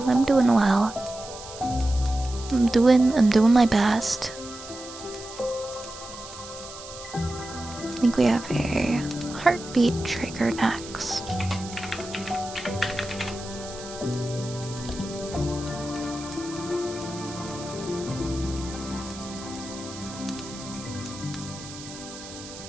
I'm doing well. I'm doing my best. I think we have a heartbeat trigger next.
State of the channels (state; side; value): noise; right; hiss, 14 dB below the sound